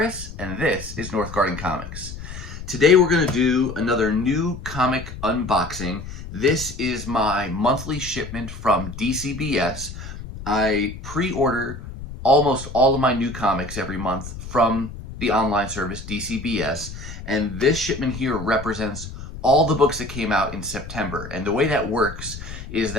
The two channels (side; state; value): left; noise; rumble, 11 dB below the sound